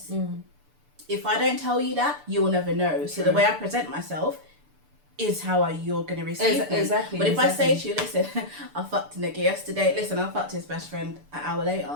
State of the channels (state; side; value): late; left; 6.8 ms